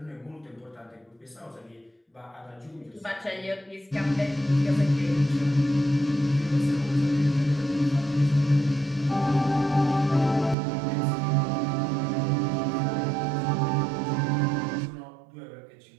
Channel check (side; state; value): left; drops out; at 10.6 s